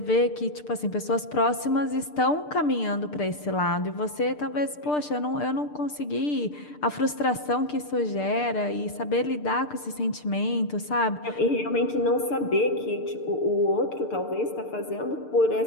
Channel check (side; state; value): right; late; 6.7 ms